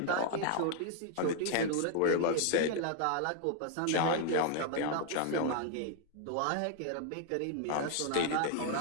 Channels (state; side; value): different; both; correlation 0.00